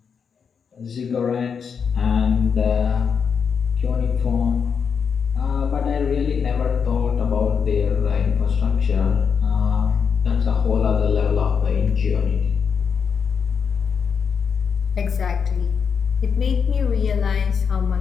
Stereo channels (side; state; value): right; quieter; 6.4 dB